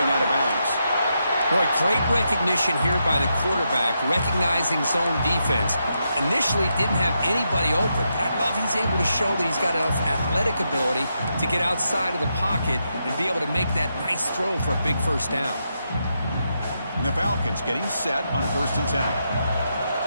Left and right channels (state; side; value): inverted; both; correlation -0.83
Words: out of bounds. Boy, great recognition here by the quarterback, recognizing zone defense. Initially didn't have anybody open, but I love he's able to show that he's got enough athletic ability to get outside of the pocket and be able to make that nice throw for a big first down. And the Falcons getting set on 1st and 10.